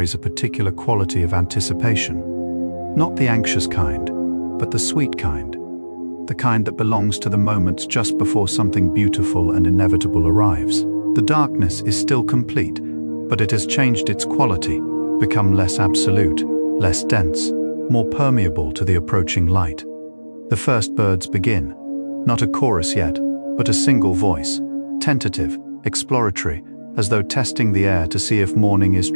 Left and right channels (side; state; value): both; inverted; correlation -1.00